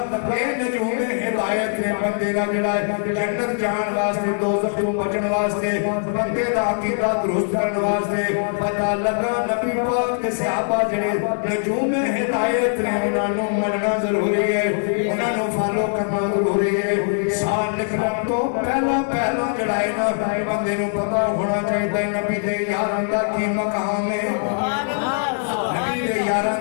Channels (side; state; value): right; silent; 64 dB below the other